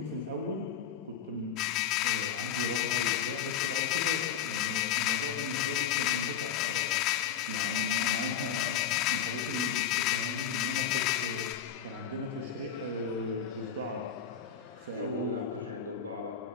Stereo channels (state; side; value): quieter; right; 8.2 dB